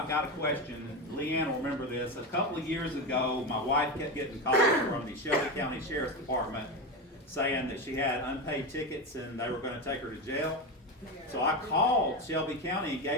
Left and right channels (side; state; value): both; normal; correlation 0.17